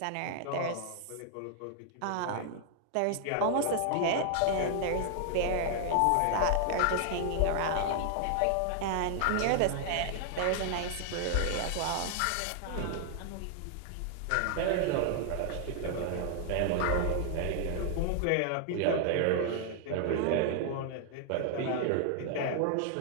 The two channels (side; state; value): both; different; correlation 0.00